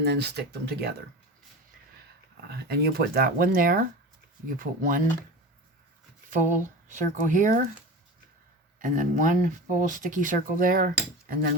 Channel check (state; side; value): normal; both; correlation 0.31